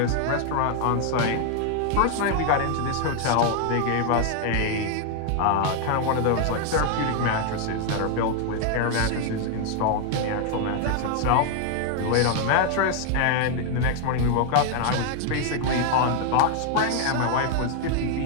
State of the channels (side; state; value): both; different; correlation 0.00